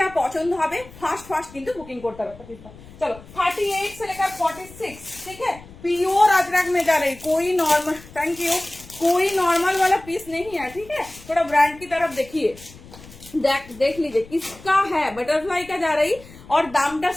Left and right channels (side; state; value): left; noise; rumble, 20 dB below the sound